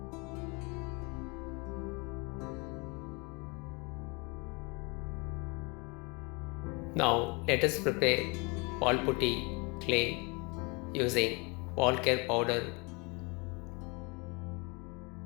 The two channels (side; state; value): right; quieter; 29.8 dB